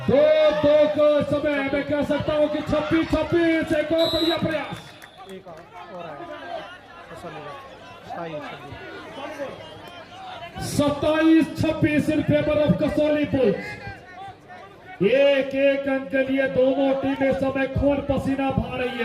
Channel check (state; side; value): identical; both; correlation 1.00